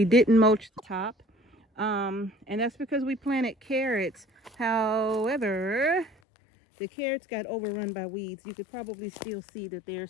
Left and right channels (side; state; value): right; drops out; at 6.2 s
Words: didn't mulch the top, and that's because we planted carrots. However, the carrots got overrun by weeds. You could probably still see that there's